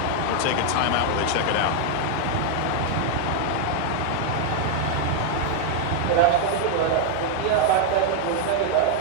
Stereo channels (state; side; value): different; both; correlation 0.00